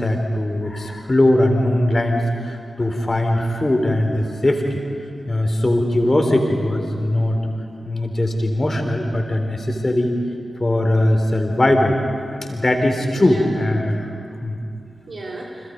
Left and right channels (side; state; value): both; normal; correlation 0.96